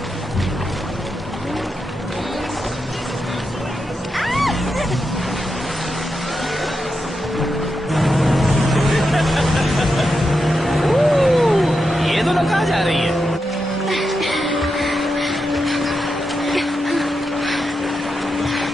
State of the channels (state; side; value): normal; both; correlation 0.87